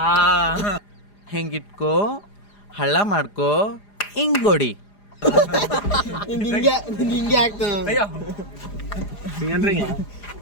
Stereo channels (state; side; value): late; right; 4.9 ms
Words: ಹೆಂಗಿಟ್ಕೋ ಹಳ್ಳ ಮಾಡ್ಕೋ ಹಿಂಗೊಡಿ. ಹಿಂಗೆ ಆಗ್ತದೆ